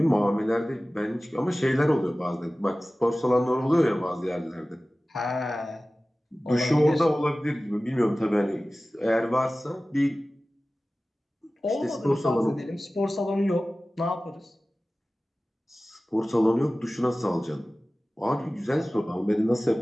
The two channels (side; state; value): both; normal; correlation 0.97